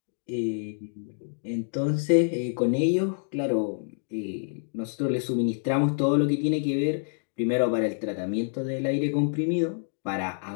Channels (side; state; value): right; silent; digital silence